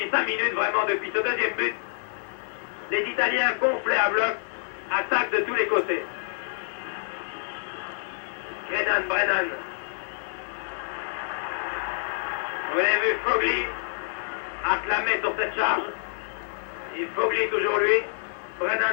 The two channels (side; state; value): right; silent; digital silence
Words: 5 minutes, vraiment, depuis ce deuxième but, les Italiens gonflés à bloc, attaquent de tous les côtés. Brennan. Vous avez vu Fogli acclamé sur cette charge. Et Fogli toujours lui.